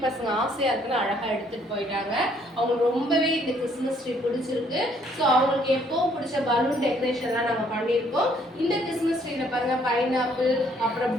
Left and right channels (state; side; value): normal; both; correlation 0.65